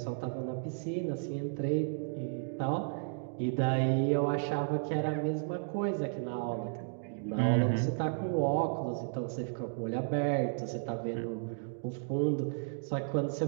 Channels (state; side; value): silent; left; digital silence